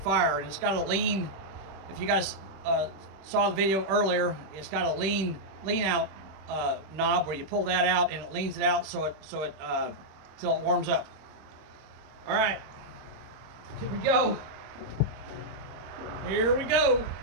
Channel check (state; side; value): late; left; 26 ms